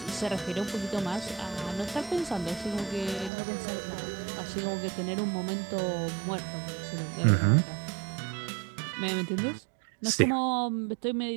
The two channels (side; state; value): left; drops out; at 3.3 s